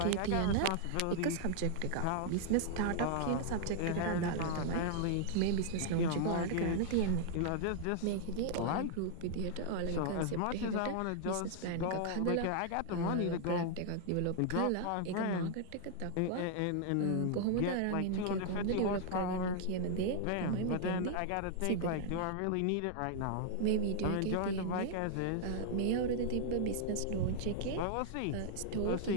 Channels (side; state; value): both; different; correlation -0.01